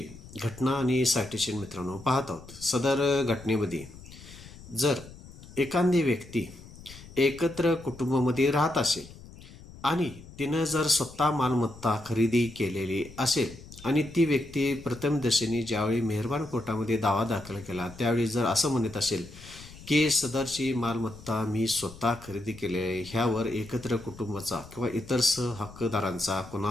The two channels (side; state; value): left; noise; rumble, 18 dB below the sound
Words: घटना आणि सायटेशन मित्रांनो पाहत आहोत. सदर घटनेमध्ये जर एखादी व्यक्ती एकत्र कुटुंबामध्ये राहत असेल आणि तिनं जर स्वतः मालमत्ता खरेदी केलेली असेल आणि ती व्यक्ती प्रथम दशेने ज्यावेळी मेहरबान कोर्टामध्ये दावा दाखल केला त्यावेळी जर असं म्हणत असेल की सदरची मालमत्ता मी स्वतः खरेदी केली आहे, ह्यावर एकत्र कुटुंबाचा किंवा इतर सहहक्कदारांचा